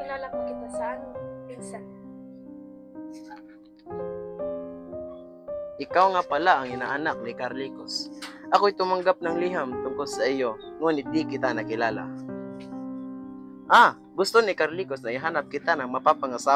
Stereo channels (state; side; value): identical; both; correlation 1.00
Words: pa kita sa aming pinsan. Ikaw nga pala ang inaanak ni Carlicos. Ako'y tumanggap ng liham tungkol sa iyo, ngunit di kita nakilala. Gusto ni Carlicos na ihanap kita ng